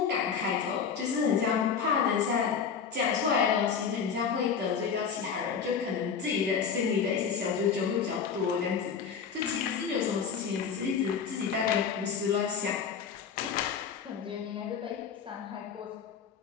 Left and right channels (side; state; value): right; quieter; 6.6 dB